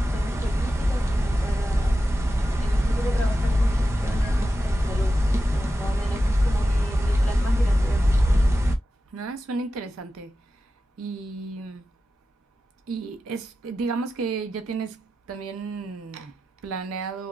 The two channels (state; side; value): normal; both; correlation 0.92